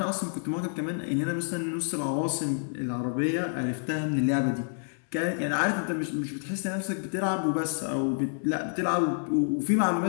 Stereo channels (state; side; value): silent; right; 59 dB below the other